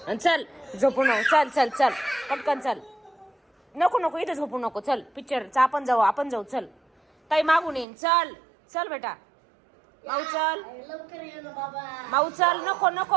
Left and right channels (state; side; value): drops out; left; at 7.9 s